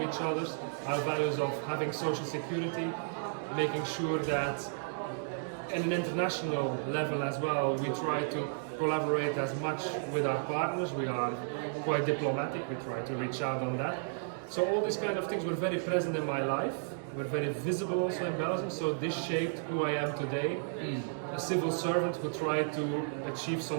each other, our values of having social security, making sure that at an international level as well, we try to collaborate as much with our partners. We are quite diplomatic, we try to reach out on that. So all these kind of things were very present in my life, were very visible also in Belgium, so this shaped who I am today. A civil servant who tried to achieve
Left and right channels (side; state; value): left; silent; digital silence